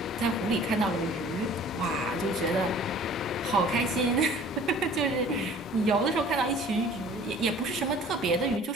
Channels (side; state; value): both; normal; correlation 0.49